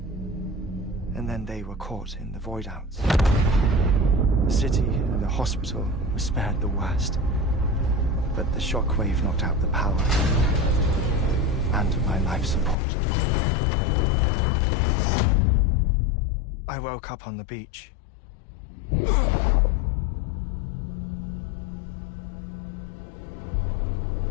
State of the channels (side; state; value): right; drops out; at 12.8 s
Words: And then they were caught in the void-outs. The city and the hospital were spared the worst, but the shockwave knocked out the power and my life support. I woke up on the beach.